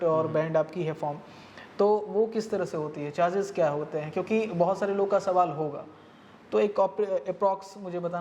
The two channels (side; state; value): both; identical; correlation 1.00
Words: और बैंड आपकी है फॉर्म, तो वो किस तरह से होती है, चार्जेस क्या होते हैं? क्योंकि बहुत सारे लोग का सवाल होगा, तो एक अप्रॉक्स मुझे